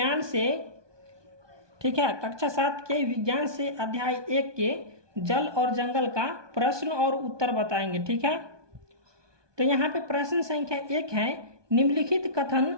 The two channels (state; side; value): late; left; 1.2 ms